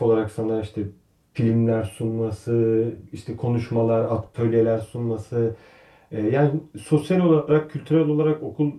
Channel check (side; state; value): both; identical; correlation 1.00